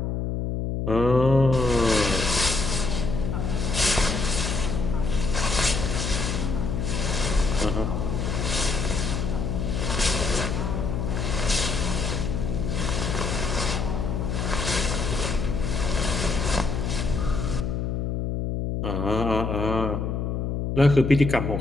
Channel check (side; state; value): left; noise; hum, 1 dB below the sound